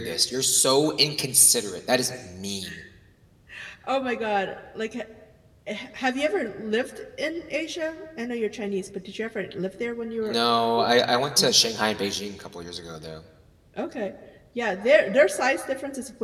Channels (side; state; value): both; identical; correlation 1.00